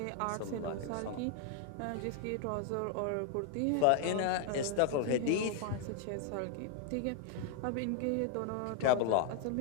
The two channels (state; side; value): different; both; correlation 0.00